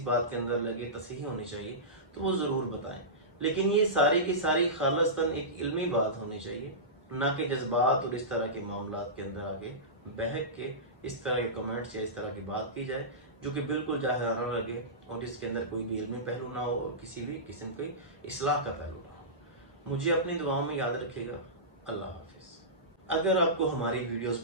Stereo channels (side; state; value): both; normal; correlation -0.19